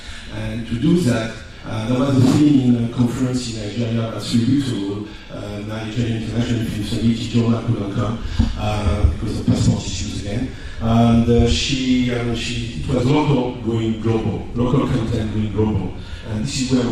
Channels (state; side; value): identical; both; correlation 1.00